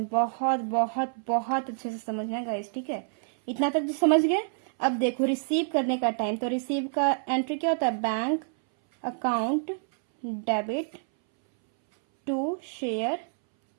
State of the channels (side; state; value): left; silent; 60 dB below the other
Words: बहुत बहुत बहुत अच्छे से समझना है गाइस, ठीक है, इतना तक तो समझ गए। अब देखो रिसीव करने का टाइम, तो रिसीव का एंट्री क्या होता है, bank account debit to share